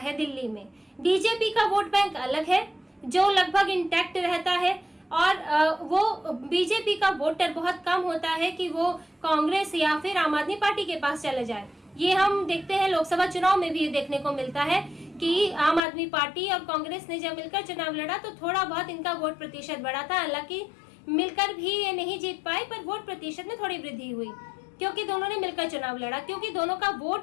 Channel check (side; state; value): right; drops out; at 15.8 s